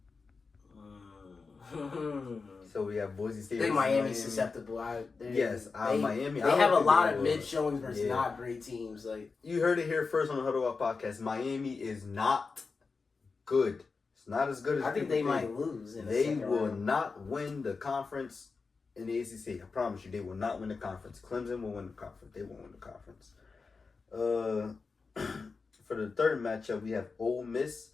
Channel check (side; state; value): right; quieter; 4.5 dB